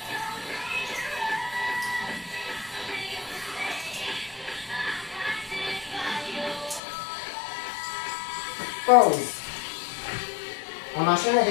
Pause. On enchaîne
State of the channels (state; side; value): drops out; right; at 6.8 s